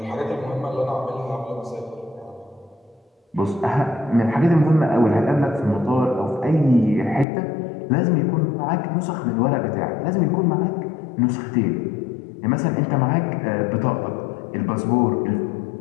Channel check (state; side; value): drops out; right; at 7.2 s